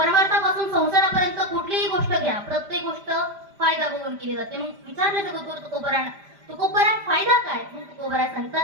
संसारापर्यंत कुठलीही गोष्ट घ्या, प्रत्येक गोष्ट फायदा बघून केली जाते. मग विचारलं जगद्गुरु तुकोबरांना, तुकोबरा फायदा काय? मग तुकोबरा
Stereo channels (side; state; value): left; late; 5.0 ms